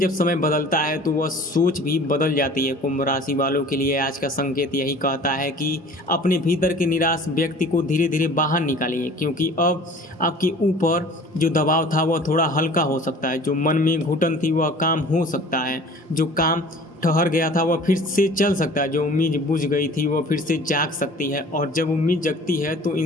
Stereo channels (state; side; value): normal; both; correlation 0.47